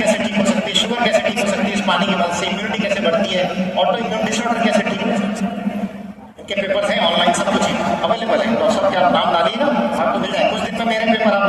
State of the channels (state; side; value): identical; both; correlation 1.00